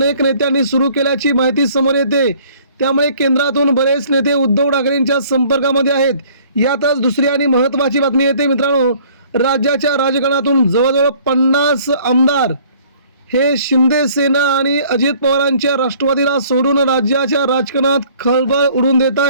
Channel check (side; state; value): both; inverted; correlation -0.56